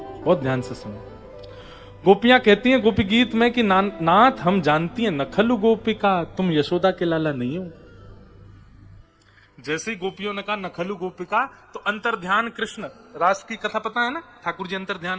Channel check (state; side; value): identical; both; correlation 1.00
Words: बहुत ध्यान से सुनो। गोपियां कहती हैं गोपी गीत में कि नाथ हम जानती हैं, नखलु गोपिका, तुम यशोदा के लाला नहीं हो। जैसे ही गोपियों ने कहा नखलु गोपिका, तो अंतर्ध्यान कृष्ण, रास की कथा पता है ना, ठाकुर जी